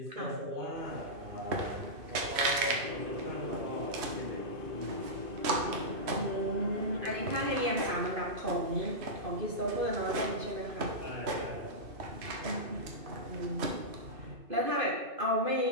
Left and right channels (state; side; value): late; left; 2.5 ms